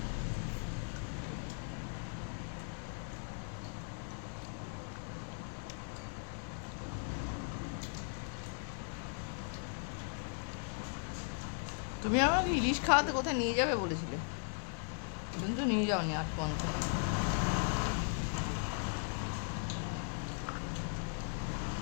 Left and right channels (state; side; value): silent; right; 52 dB below the other